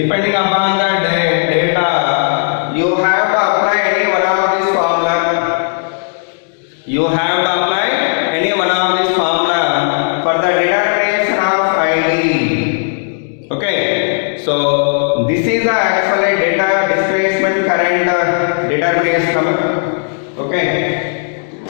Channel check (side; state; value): right; silent; digital silence